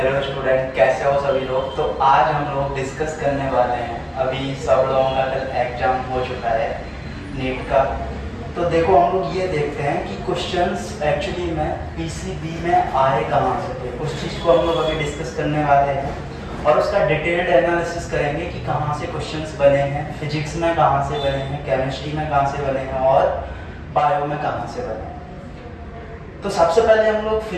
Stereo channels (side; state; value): both; identical; correlation 1.00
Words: student, कैसे हो सभी लोग। तो आज हम लोग डिस्कस करने वाले हैं, अभी सब लोगों का कल एग्जाम हो चुका है नीट का। तो देखो हम लोग ये देखते हैं कि क्वेश्चंस एक्चुअली में पीसीबी में आए कहाँ से थे। उस चीज़ को हम लोग अभी डिस्कस करने वाले हैं और उसका डिटेल्ड एनालिसिस करेंगे कि कहाँ से क्वेश्चंस बने हैं, फिजिक्स में कहाँ से बने हैं, केमिस्ट्री में कहाँ से बने हैं और बायो में कहाँ से बने हैं। तो सबसे पहले हम लोग